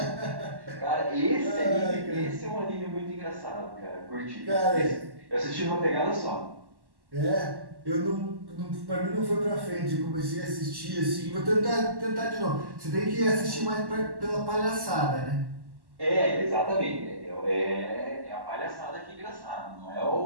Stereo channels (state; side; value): late; left; 1.1 ms